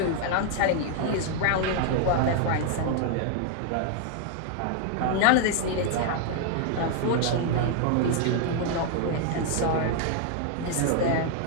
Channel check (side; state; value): both; different; correlation 0.00